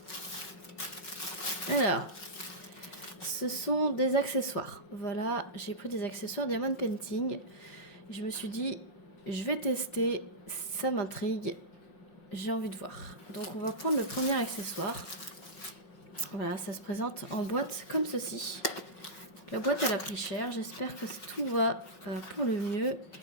Alors, ce sont des accessoires. Voilà, j'ai pris des accessoires Diamond Painting. Je me suis dit, je vais tester, ça m'intrigue, j'ai envie de voir. Donc on va prendre le premier accessoire. Voilà, ça se présente en boîte comme ceci. La boîte elle a pris cher, j'espère que tout va pour le mieux.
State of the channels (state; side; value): late; right; 5.4 ms